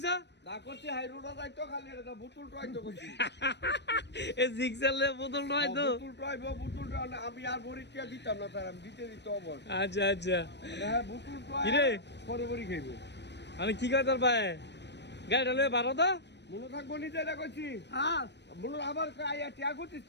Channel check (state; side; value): late; right; 0.50 ms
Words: না করছি হাই রোড যাইতো খালি এটা বুতুল ট্রাইতো করছি। এ জিক্সালে বোতল নয় তো। বুতুল আমি আর বরিটিয়া দিতাম না স্যার, আমি দিতে অবর। আচ্ছা আচ্ছা হ্যাঁ বুতুল ট্রাই কিরে পরে বরি খাইবো। আমি কি কই তোর ভাই গাড়িটা লয়ে বারো তো মনে থাকবো নিজে এটা করছি। হ্যাঁ মনে আবার আইয়া টিয়া করছিস